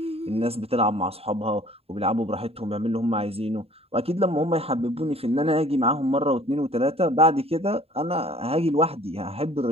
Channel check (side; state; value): left; late; 0.29 ms